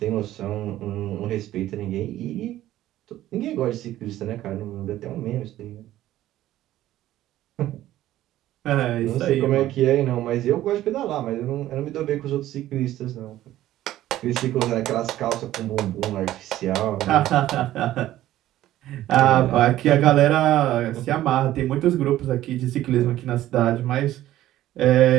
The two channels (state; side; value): quieter; left; 14.0 dB